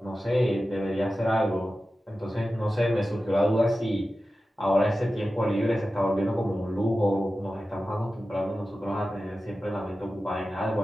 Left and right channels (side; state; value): both; normal; correlation 0.94